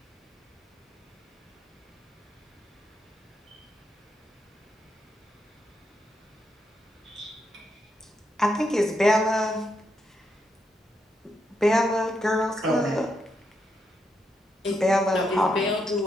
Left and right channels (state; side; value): normal; both; correlation 0.81